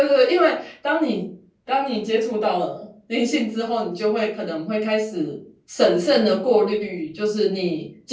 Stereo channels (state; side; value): identical; both; correlation 1.00